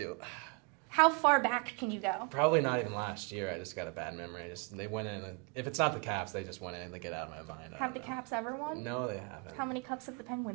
How far back can you go? Probably not even last year. I just got a bad memory. They went in. And, if it's not the Caps, they just went in and they get out of my mind. I Have the don't know. Caps ever won? No, they haven't. How many cups have the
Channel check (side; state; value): left; quieter; 31.8 dB